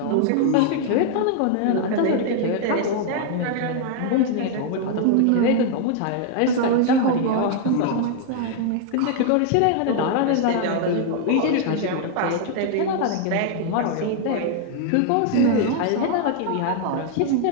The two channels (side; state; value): both; different; correlation 0.00